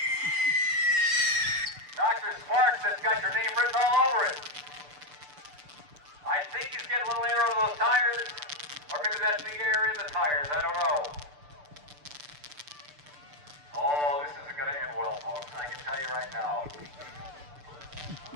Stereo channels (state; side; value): late; left; 6.8 ms